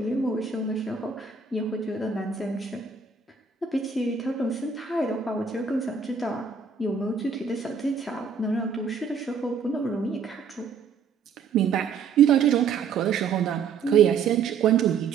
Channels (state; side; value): quieter; left; 5.9 dB